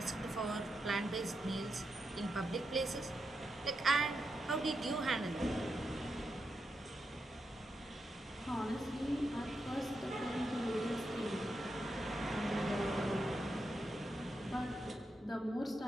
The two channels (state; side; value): normal; both; correlation 0.85